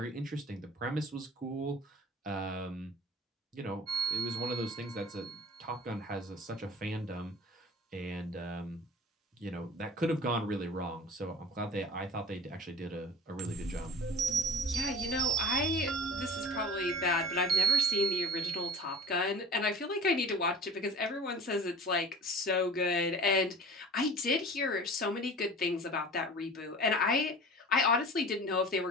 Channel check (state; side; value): normal; both; correlation 0.41